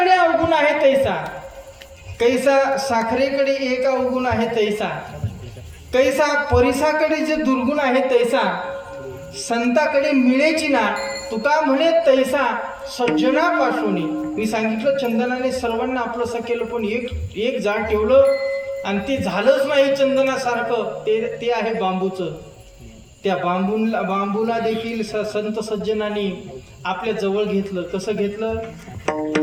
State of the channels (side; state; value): both; identical; correlation 1.00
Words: अवगुण आहे तैसा, कैसा साखरेकडे एक अवगुण आहे तैसा, कैसा परिसाकडे जे दुर्गुण आहे तैसा संताकडे मिळेची ना. तुका म्हणे तैसा सज्जनापासून. मी सांगितलं चंदनाने सर्वांना आपलंसं केलं, पण एक झाड ठेवलं आणि ते झालंच नाही चंदनासारखं. ते आहे बांबूचं. त्या बांबूला देखील संत सज्जनांनी आपल्या जवळ घेतलं. कसं घेतलं?